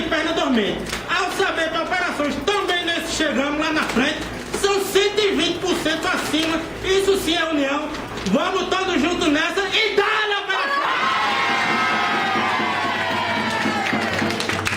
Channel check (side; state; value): both; identical; correlation 1.00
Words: perna dormente. Ao saber que operações também nesse chegamos lá na frente, são 120% acima, isso sim é união. Vamos todos juntos nessa e dá-lhe a operação!